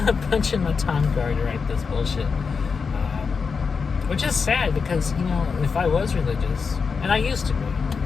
Punching my time card to write this bullshit. Which is sad because, if I was religious, and I used to be,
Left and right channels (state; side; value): quieter; right; 5.4 dB